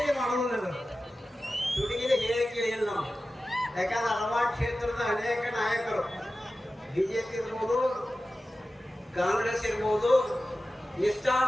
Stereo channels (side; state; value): both; normal; correlation 0.95